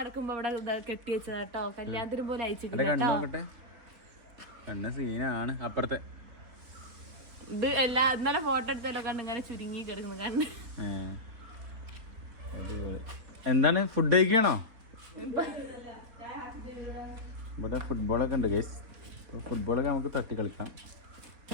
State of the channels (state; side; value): late; left; 3.9 ms